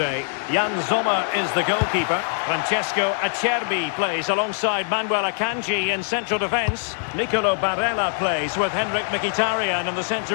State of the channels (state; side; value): silent; right; 63 dB below the other